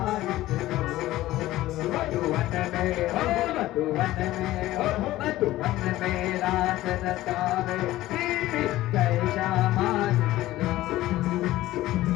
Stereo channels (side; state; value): right; quieter; 16.0 dB